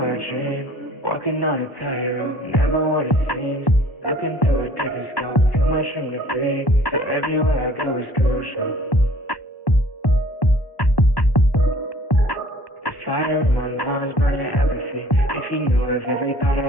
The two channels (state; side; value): late; right; 1.1 ms